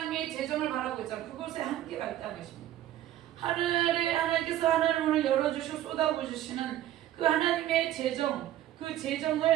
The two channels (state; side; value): quieter; left; 12.8 dB